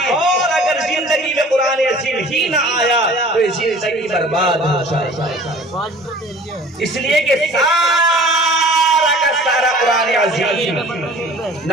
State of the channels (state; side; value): normal; both; correlation 0.47